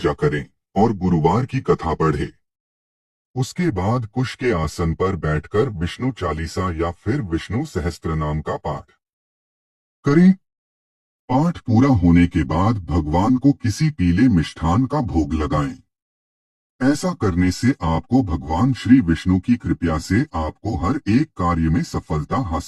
करें और गुरुवार की कथा पढ़ें। उसके बाद कुश के आसन पर बैठकर विष्णु चालीसा या फिर विष्णु सहस्त्रनाम का पाठ करें। पाठ पूरा होने के बाद भगवान को किसी पीले मिष्ठान का भोग लगाएं। ऐसा करने से आपको भगवान श्री विष्णु की कृपा से आपको हर एक कार्य में सफलता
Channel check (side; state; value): both; identical; correlation 1.00